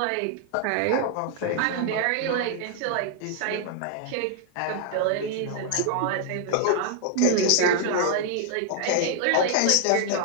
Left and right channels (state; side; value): different; both; correlation 0.00